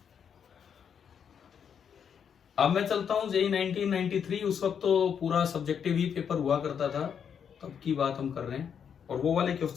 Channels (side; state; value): right; quieter; 7.6 dB